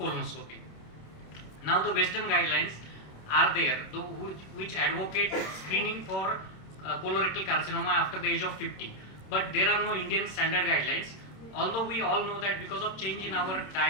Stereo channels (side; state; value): right; late; 26 ms